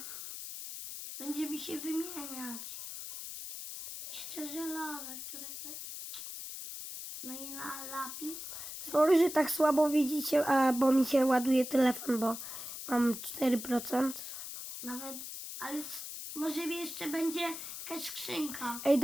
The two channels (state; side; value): noise; left; hiss, 8 dB below the sound